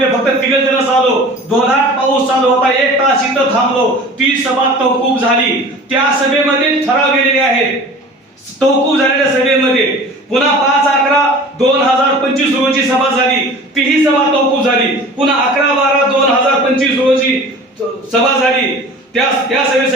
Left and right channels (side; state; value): both; normal; correlation 0.41